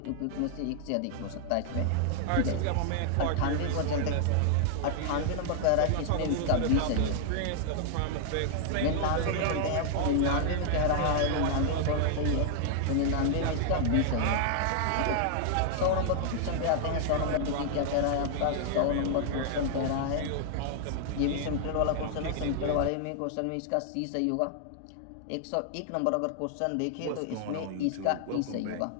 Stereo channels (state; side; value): different; both; correlation 0.00